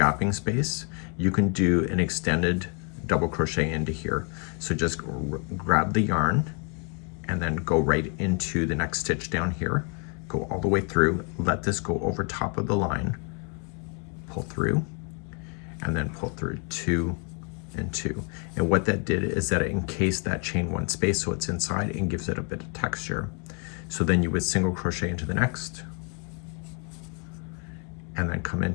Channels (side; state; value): right; quieter; 37.2 dB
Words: space, you can do an extended double crochet into here. So just grab the yarn and then go right into the next stitch down here, go all the way through, let this go over top of the line, pull through, and then pull through 2 and 2. And what that did is that it encased that chain 1 space so it's inside and gives it a bit of texture. So then you would single crochet into the next, and then come